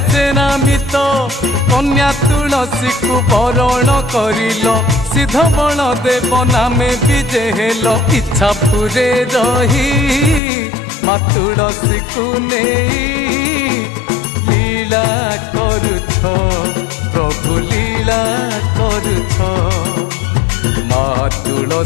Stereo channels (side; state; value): right; drops out; at 10.4 s